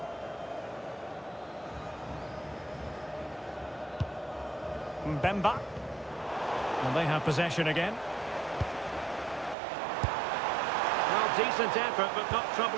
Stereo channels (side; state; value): left; drops out; at 9.6 s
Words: Mbemba. And they have possession again. Well, decent effort, but not